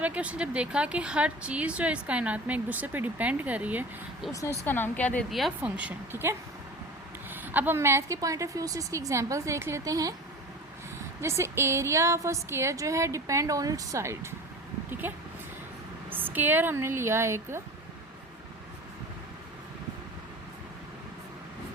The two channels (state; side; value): normal; both; correlation 0.36